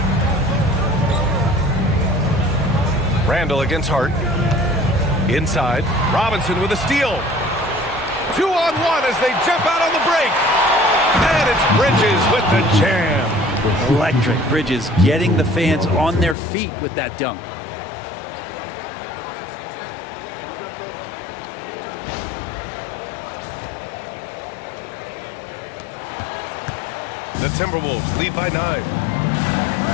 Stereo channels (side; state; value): right; drops out; at 16.4 s